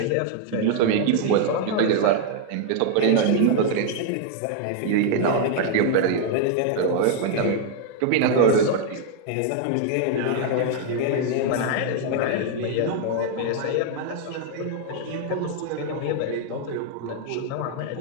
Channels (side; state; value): both; different; correlation 0.00